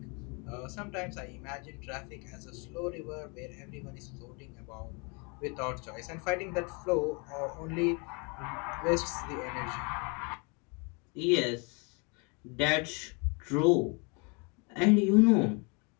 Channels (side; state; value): right; quieter; 32.7 dB